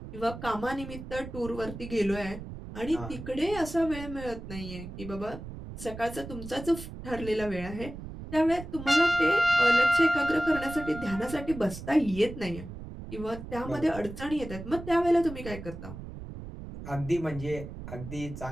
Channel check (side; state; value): right; noise; rumble, 11 dB below the sound